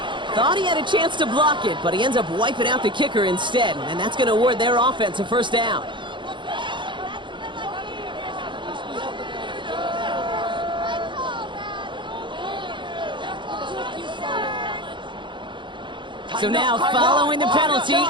Thought he had a chance to block it, but he ends up wiping out the kicker instead, and that's going to award their offense a 1st down. So now, following the penalty,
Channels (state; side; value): late; left; 0.23 ms